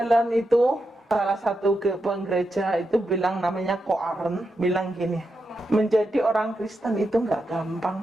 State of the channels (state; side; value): normal; both; correlation 0.86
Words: itu salah satu penggereja itu bilang, namanya Ko Aren, bilang gini, menjadi orang Kristen itu nggak